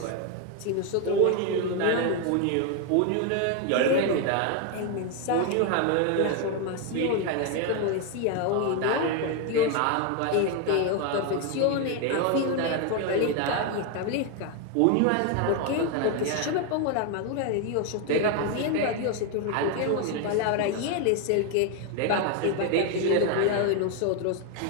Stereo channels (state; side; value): different; both; correlation 0.01